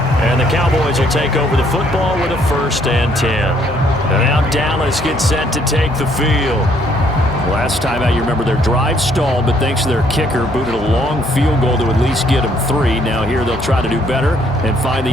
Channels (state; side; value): noise; right; hum, 18 dB below the sound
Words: the Cowboys will take over the football with a 1st and 10. And now Dallas gets set to take the field. Last time out, you remember their drive stalled, but thanks to their kicker, booted a long field goal to at least get them 3. Now here they'll try to do better and find the